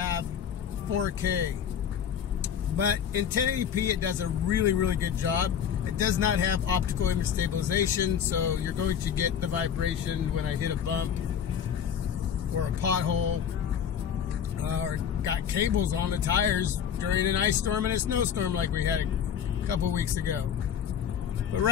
4K. But in 1080p it does a really good job. It does not have optical image stabilization, so you're going to get the vibration when I hit a bump or a pothole. Or got cables on the tires during an ice storm and a snowstorm like we had a couple weeks ago. But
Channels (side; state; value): right; quieter; 8.4 dB